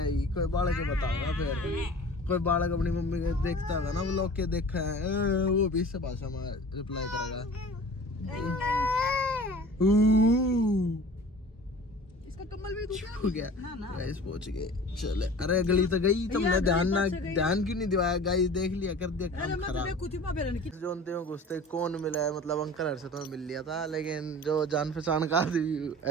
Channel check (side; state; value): both; normal; correlation 0.42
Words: कोई बालक के बताऊंगा फिर। कोई बालक अपनी मम्मी के देखता होगा ना व्लॉग के, देखा है वो भी इस भाषा में रिप्लाई करेगा। इसका कम्बल भी हो गया। गाइस पहुंच गए, चले। अरे गली तो गई, तुमने ध्यान क्यों नहीं दिवाया? गाइस देख लिया, कर दिया काम खराब। जोनते में घुसते कौन मिला है, मतलब अंकल हर से तो मिल लिया था, लेकिन जो जान पहचान का